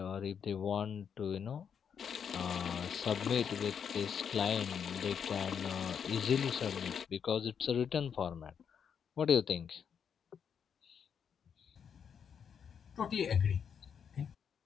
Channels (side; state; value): right; quieter; 7.4 dB